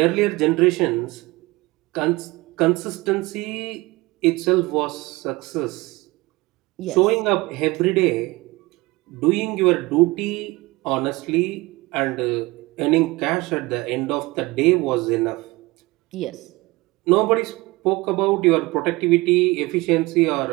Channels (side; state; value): left; quieter; 22.0 dB